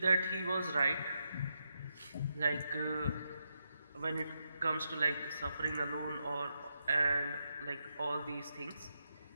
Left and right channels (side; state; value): both; inverted; correlation -0.83